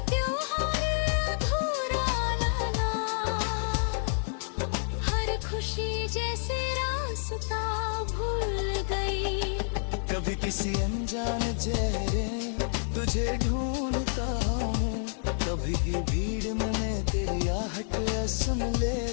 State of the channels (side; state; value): right; silent; 59 dB below the other